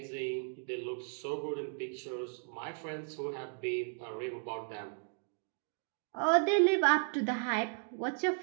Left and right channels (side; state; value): left; silent; 54 dB below the other